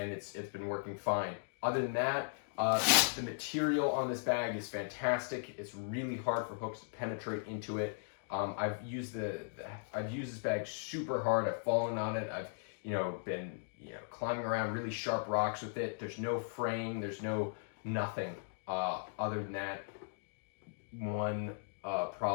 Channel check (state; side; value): silent; right; digital silence